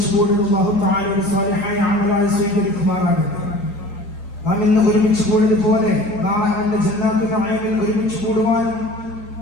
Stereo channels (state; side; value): late; right; 4.3 ms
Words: കൂടുന്ന അല്ലാഹു തആലയുടെ സ്വാലിഹായ അമലായി സ്വീകരിക്കുമാറാകട്ടെ. നാം ഇന്ന് ഒരുമിച്ച് കൂടിയതുപോലെ നാളെ അവന്റെ ജന്നാത്തുൽ നഈമിൽ ഒരുമിച്ച് കൂടുവാനും